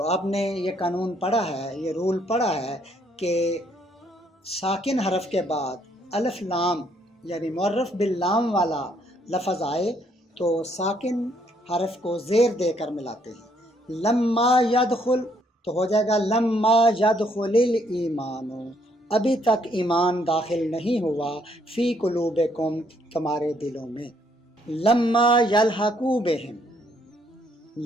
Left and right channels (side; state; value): both; normal; correlation 0.69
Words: آپ نے یہ قانون پڑھا ہے، یہ رول پڑھا ہے کہ ساکن حرف کے بعد الف لام یعنی معرف باللام والا لفظ آئے تو ساکن حرف کو زیر دے کر ملاتے ہیں، لما یدخل تو ہو جائے گا لما یدخل الایمان، ابھی تک ایمان داخل نہیں ہوا، فی قلوبکم تمہارے دلوں میں، لما یلحقوا بہم،